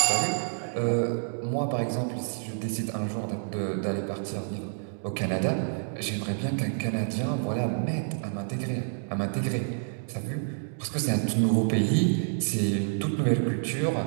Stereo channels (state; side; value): silent; left; digital silence